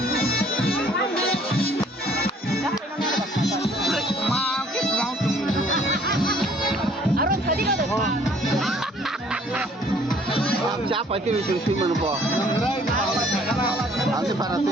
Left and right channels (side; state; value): both; normal; correlation 0.59